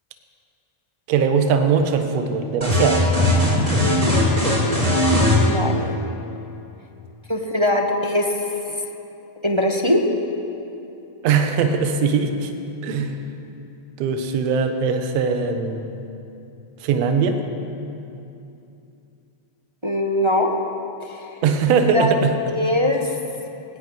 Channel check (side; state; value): left; late; 1.3 ms